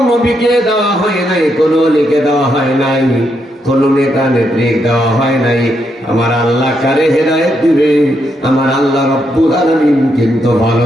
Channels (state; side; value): normal; both; correlation 0.79